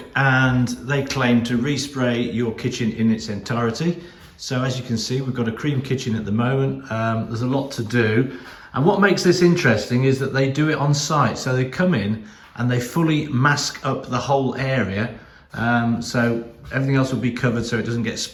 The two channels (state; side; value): identical; both; correlation 1.00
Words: and they claim to respray your kitchen in its entirety. So as you can see, we've got a cream kitchen at the moment. There's a lot to do. And what makes this interesting is that they do it on site. So they come in and they fully mask up the whole area. So everything else will be covered so it doesn't get